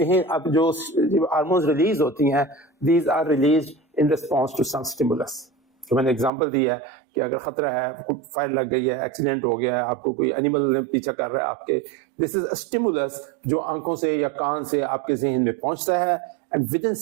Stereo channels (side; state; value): left; drops out; at 6.3 s